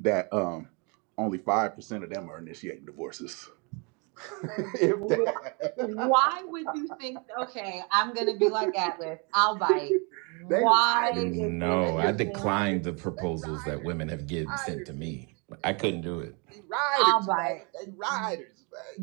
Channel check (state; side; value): quieter; left; 33.0 dB